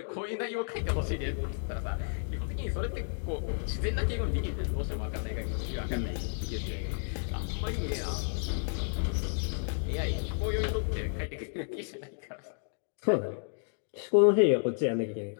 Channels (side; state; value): right; silent; digital silence